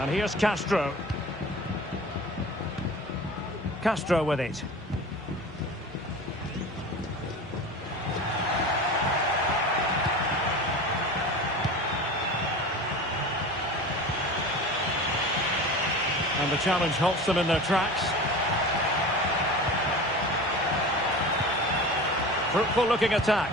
And here's Castro. Castro with it. And And the challenge halts them in their tracks. Fruitful looking attack.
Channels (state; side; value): normal; both; correlation 0.34